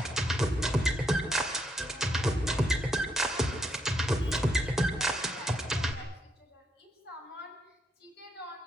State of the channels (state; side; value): normal; both; correlation 0.77